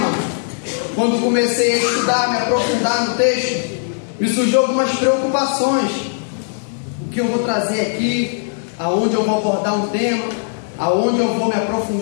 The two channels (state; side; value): silent; right; digital silence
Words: quando comecei a estudar, me aprofundar no texto, me surgiu algumas preocupações. O que eu vou trazer aqui, aonde eu vou abordar um tema, aonde eu vou me